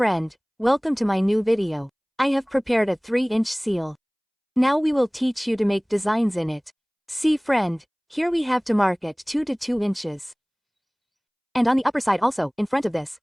welcome to my new video. I have prepared a 3-inch seal. Now we will teach you to make designs in it. See friend, here we have to mark it 2 to 2 inches. And on the upper side also, in front of this,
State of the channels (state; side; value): identical; both; correlation 1.00